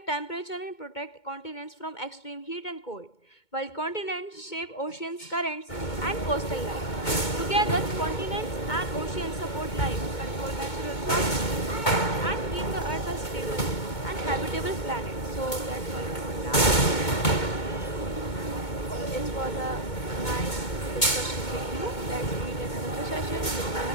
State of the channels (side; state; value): right; late; 2.2 ms